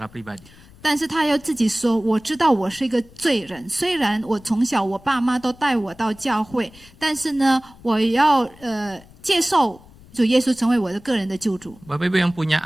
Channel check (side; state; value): left; noise; rumble, 24 dB below the sound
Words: pribadi. 但是他要自己说，我知道我是一个罪人，虽然我从小我爸妈都带我到教会，但是呢，我要接受主耶稣成为我的个人的救主。 Bapak Ibu yang punya